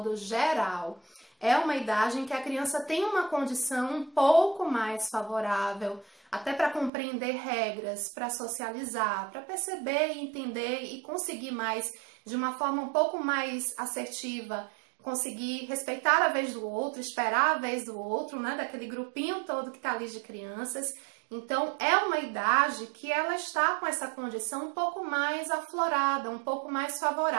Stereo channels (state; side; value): drops out; left; at 6.9 s